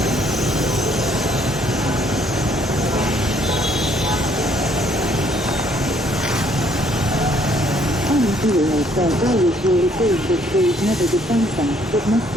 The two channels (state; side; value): normal; both; correlation 0.65